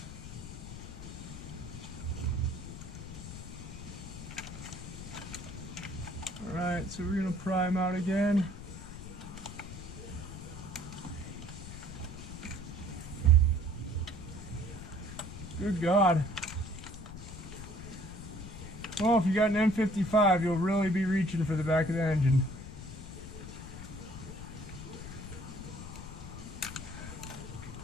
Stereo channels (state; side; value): noise; left; rumble, 12 dB below the sound